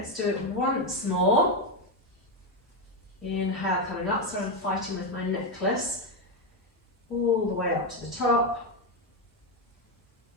do it once more. Inhale, coming up, so I'm fighting with my necklace. All the way up to the top.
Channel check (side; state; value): both; normal; correlation 0.08